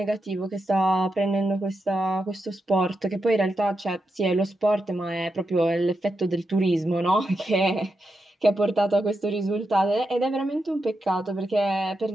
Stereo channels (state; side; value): normal; both; correlation 0.86